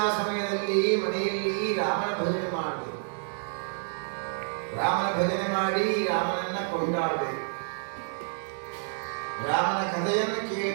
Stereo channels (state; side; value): silent; left; digital silence